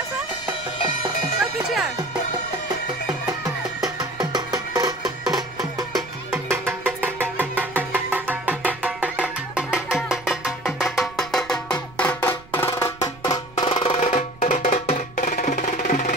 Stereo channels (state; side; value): noise; right; rumble, 22 dB below the sound